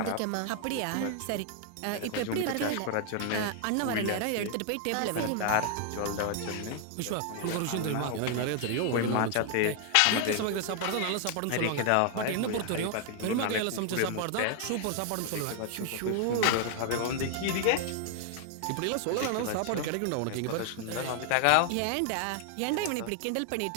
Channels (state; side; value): different; both; correlation 0.00